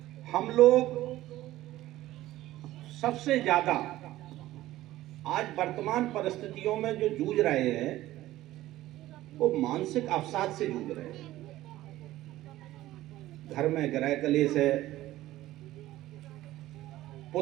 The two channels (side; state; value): left; quieter; 15.6 dB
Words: हम लोग सबसे ज्यादा आज वर्तमान परिस्थितियों में जो जूझ रहे हैं वो मानसिक अवसाद से जूझ रहे हैं। घर में गृह कलेश है,